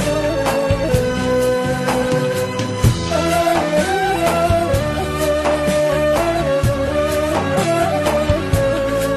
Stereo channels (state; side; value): identical; both; correlation 1.00